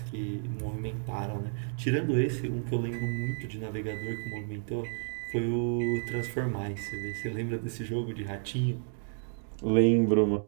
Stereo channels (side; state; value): left; silent; 57 dB below the other